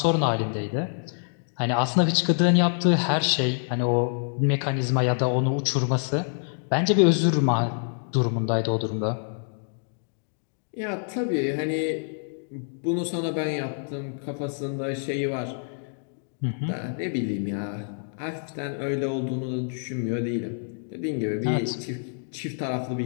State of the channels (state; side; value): silent; right; digital silence